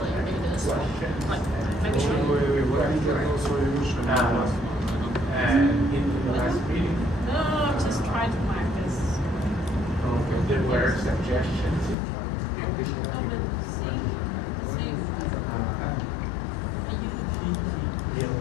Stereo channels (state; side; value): drops out; right; at 12.0 s